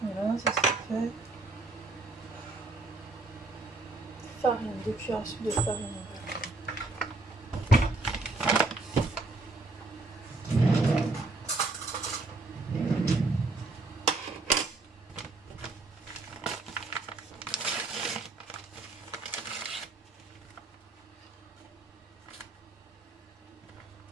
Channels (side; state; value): left; quieter; 3.2 dB